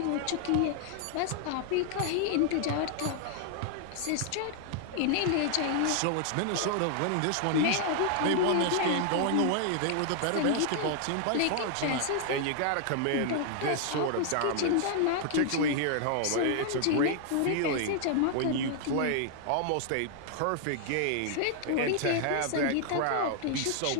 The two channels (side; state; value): both; different; correlation 0.00